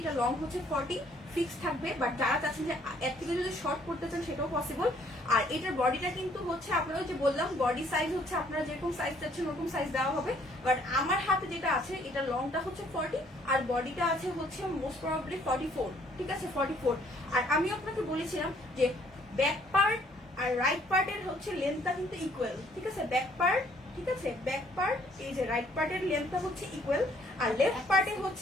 এটা লং হচ্ছে 40 ফিক্স থাকবে, বাট যারা চাচ্ছেন যে এর থেকে যদি শর্ট করতে চান সেটাও পসিবল। আর এটার বডিটা কিন্তু হচ্ছে আপনারা যে বললাম বডি সাইজ হচ্ছে আপনারা যেরকম সাইজ চাচ্ছেন ওরকম সাইজ দেওয়া হবে, বাট আমার হাতে যেটা আছে এটা লংটা হচ্ছে 40 আর বডিটা আছে হচ্ছে মোস্ট প্রবাবলি 44। ঠিক আছে, 44। আর আমি আপনাকে বলেছিলাম যে ব্যাক পার্ট আর রাইট পার্টের হচ্ছে লেন্থটা কিন্তু ইকুয়াল। ঠিক আছে, ব্যাক পার্ট, ঠিক আছে, ব্যাক পার্ট এই যে রাইট পার্টের লেন্থটা হচ্ছে ইকুয়াল, আর লেফট পার্টে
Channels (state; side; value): normal; both; correlation 0.63